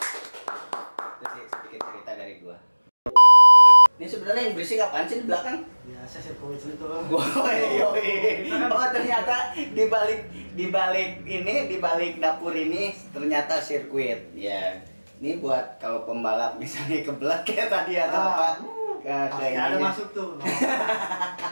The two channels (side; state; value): both; inverted; correlation -1.00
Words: Itu sih sedikit cerita dari gua. Ini sebenarnya yang berisik apaan sih di belakang? Biasa sirkuit itu. Oh ternyata di balik dapur ini ternyata sirkuit. Ya, ini buat kalau pembalap misalnya kebelat kayak tadi atau apa? Kayak ada masuk tuh.